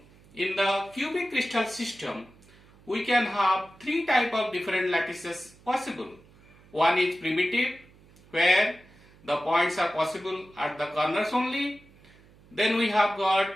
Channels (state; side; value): noise; right; hum, 27 dB below the sound